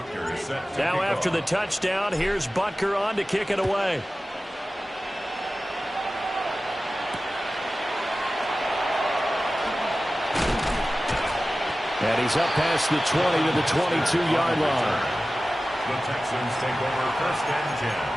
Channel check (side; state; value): both; normal; correlation 0.95